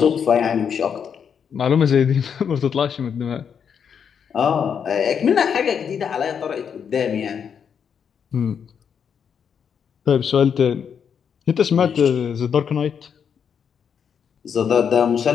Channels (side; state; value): right; quieter; 7.3 dB